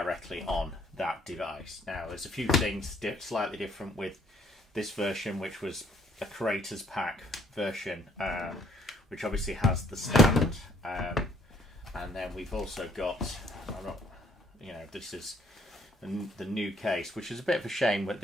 on that device. Now, there's a few things slightly different with this version, which was a creators pack version, which obviously has the stand, and then we've also got, this is the new case, which is a bit of a shame, but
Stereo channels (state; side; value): normal; both; correlation 0.65